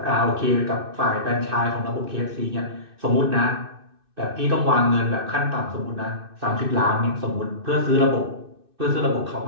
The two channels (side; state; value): left; late; 2.6 ms